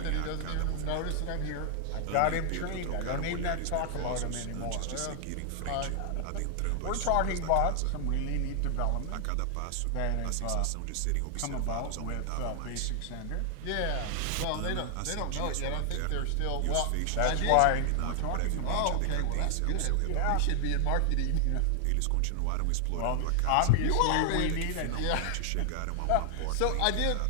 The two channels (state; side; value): different; both; correlation 0.00